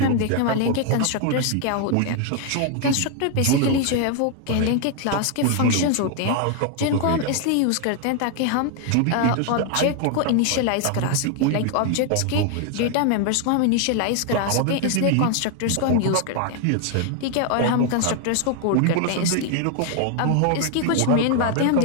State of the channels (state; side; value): different; both; correlation 0.00